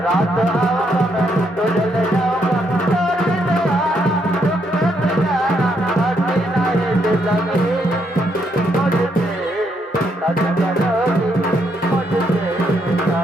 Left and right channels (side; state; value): both; normal; correlation 0.75